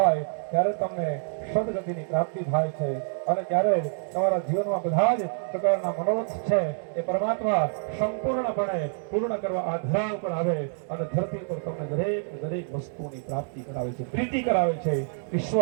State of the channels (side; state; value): left; silent; digital silence